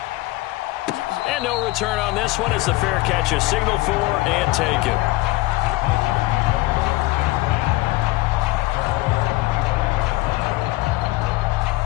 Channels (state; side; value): quieter; right; 19.7 dB